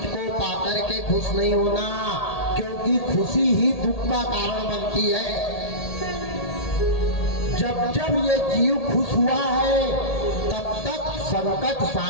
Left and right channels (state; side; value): late; right; 1.8 ms